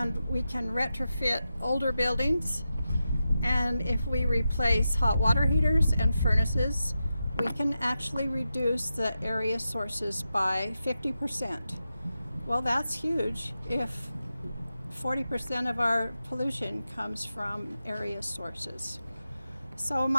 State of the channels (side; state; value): both; inverted; correlation -0.90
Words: we can retrofit older buildings, and if we replace hot water heaters and furnaces, we can actually reduce the area sources by 50%. Well, that's huge if 40% of our pollution comes from area sources. So